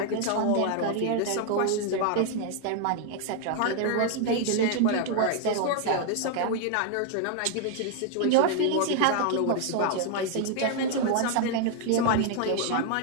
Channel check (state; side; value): different; both; correlation 0.00